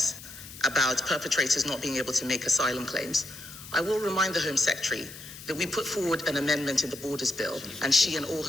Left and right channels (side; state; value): left; noise; hiss, 15 dB below the sound